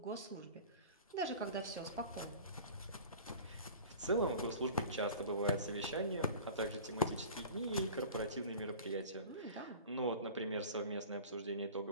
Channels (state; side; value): inverted; both; correlation -0.40